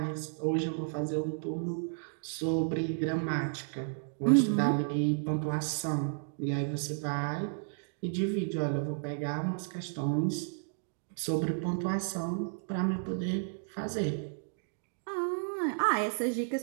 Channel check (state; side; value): silent; left; digital silence